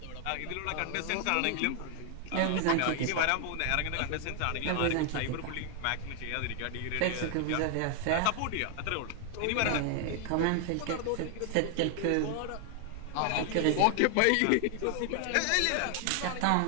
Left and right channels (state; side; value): different; both; correlation 0.00